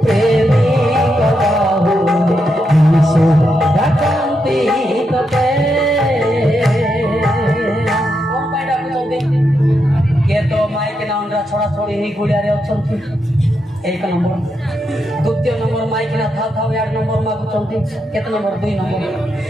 प्रेमी कबाहु जीसु डाकंती तते कोन पाइडा कुचंती के तो माइक ना अंडा छोड़ा छोड़ी ही गुड़िया रे अछंती एक नंबर द्वितीय नंबर माइक ना था यार नंबर मा कुचंती केते नंबर 2 नंबर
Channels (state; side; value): normal; both; correlation 0.83